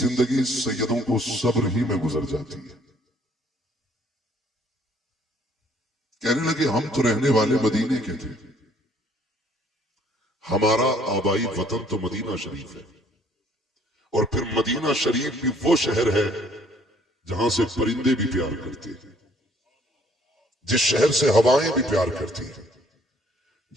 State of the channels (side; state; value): both; normal; correlation 0.61